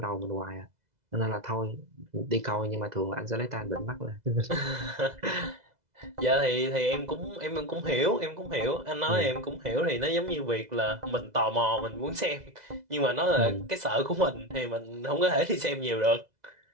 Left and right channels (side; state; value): left; late; 2.0 ms